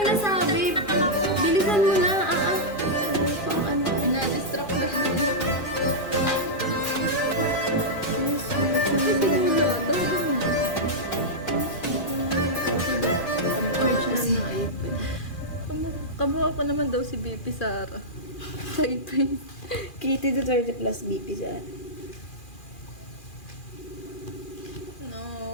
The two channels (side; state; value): right; late; 2.4 ms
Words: Bilisan mo na. Ano pang ano? Na-distract na siya. Yes, Ay, sinula. Tawagan mo na. Kamukha ko naman daw si BP Sara. Sa ipin. Kitty to 30 plus BP sa No,